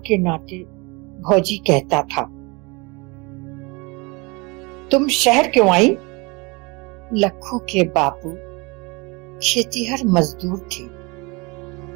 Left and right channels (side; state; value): left; quieter; 27.2 dB